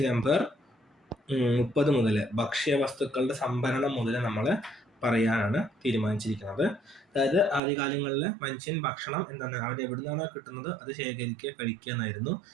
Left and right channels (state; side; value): drops out; left; at 7.6 s